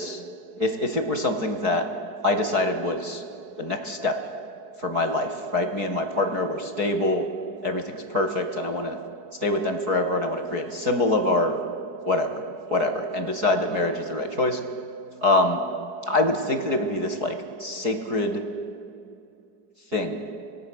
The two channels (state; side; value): late; left; 4.7 ms